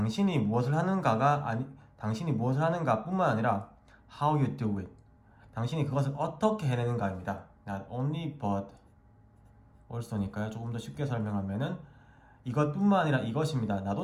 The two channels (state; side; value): identical; both; correlation 1.00